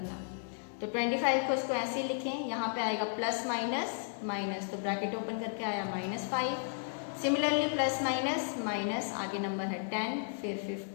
तो 25 को इसको ऐसे ही लिखें, यहाँ पे आएगा प्लस माइनस माइनस, तो ब्रैकेट ओपन करके आया -5। सिमिलरली प्लस माइनस माइनस, आगे नंबर है 10, फिर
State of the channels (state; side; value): silent; right; digital silence